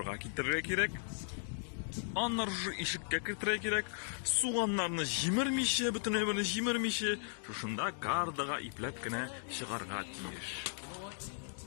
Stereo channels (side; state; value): right; silent; digital silence